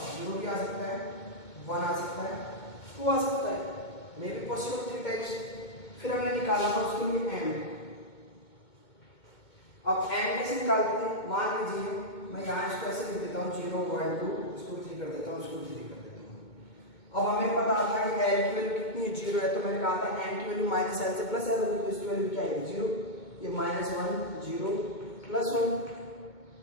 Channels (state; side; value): late; right; 2.2 ms